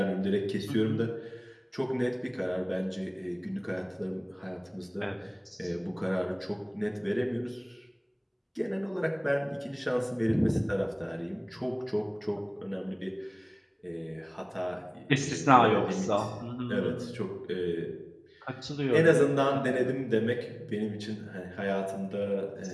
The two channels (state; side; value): identical; both; correlation 1.00